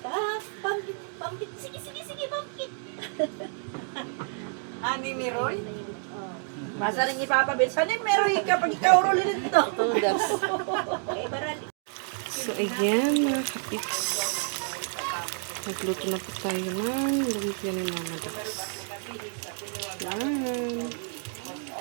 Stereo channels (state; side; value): silent; left; 56 dB below the other